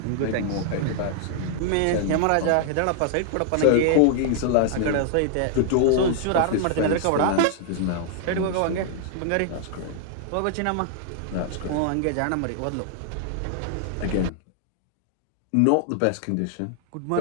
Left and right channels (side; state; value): both; different; correlation -0.01